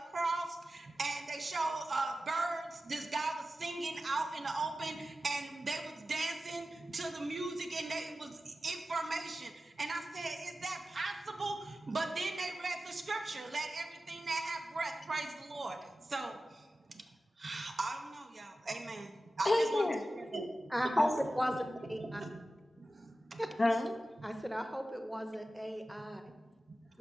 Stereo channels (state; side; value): normal; both; correlation 0.94